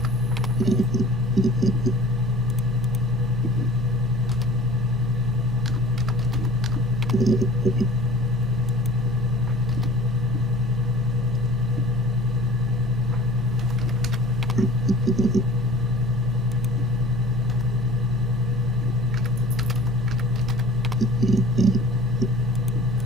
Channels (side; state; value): both; normal; correlation 0.44